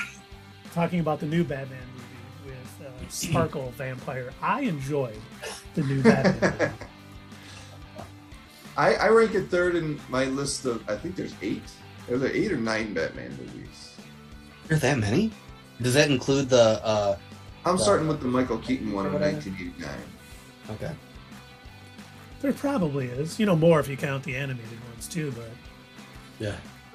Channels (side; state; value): both; identical; correlation 1.00